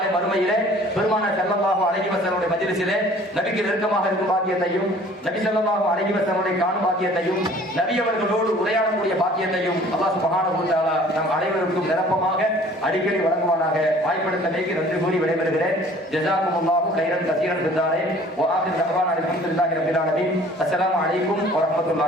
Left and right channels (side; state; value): both; normal; correlation 0.51